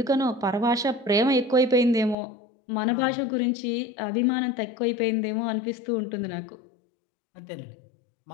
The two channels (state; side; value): drops out; right; at 2.1 s